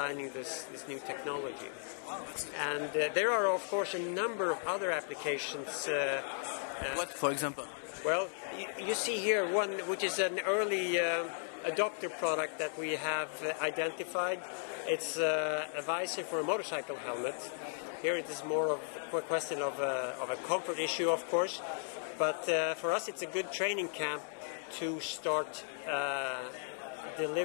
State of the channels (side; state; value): right; silent; digital silence